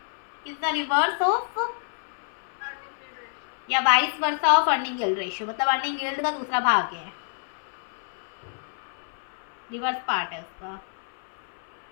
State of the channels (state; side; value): silent; right; 60 dB below the other